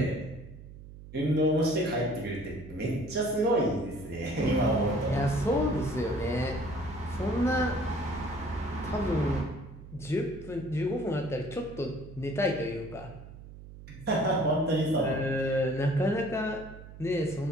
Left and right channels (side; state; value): right; noise; hum, 15 dB below the sound